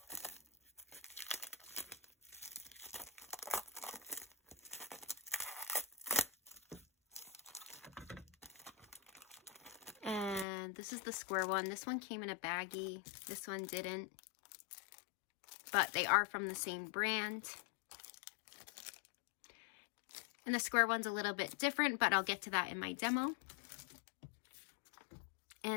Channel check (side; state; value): right; drops out; at 10.5 s